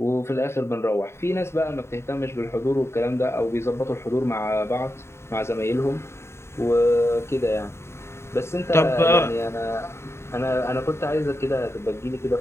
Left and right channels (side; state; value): right; late; 0.13 ms